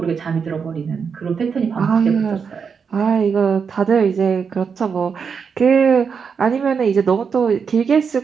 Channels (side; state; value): left; quieter; 6.1 dB